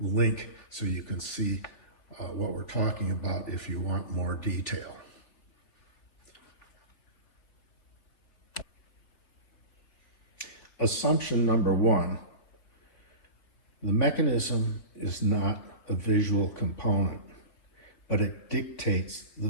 so you can see what we're talking about if you want more detail. Assumption number 1, the mechanism is not a visual component, but it dictates the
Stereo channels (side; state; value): right; late; 3.2 ms